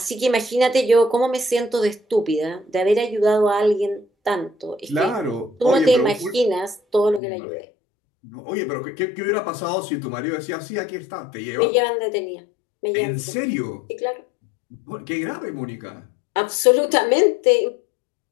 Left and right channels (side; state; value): right; drops out; at 7.2 s